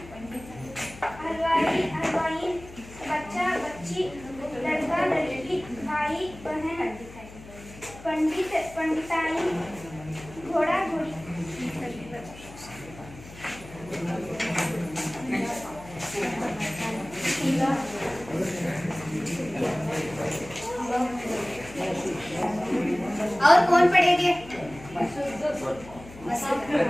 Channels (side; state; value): left; noise; hum, 17 dB below the sound